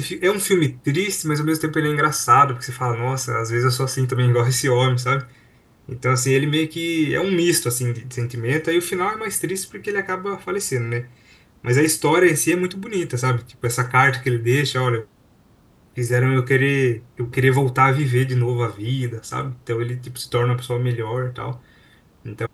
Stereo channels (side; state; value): both; identical; correlation 1.00